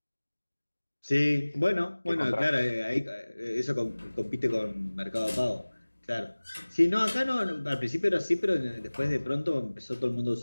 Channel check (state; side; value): inverted; both; correlation -1.00